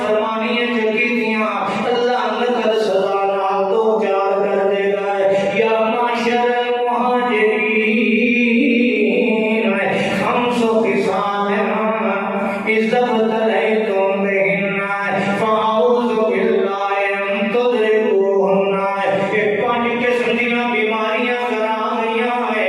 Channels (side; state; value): both; identical; correlation 1.00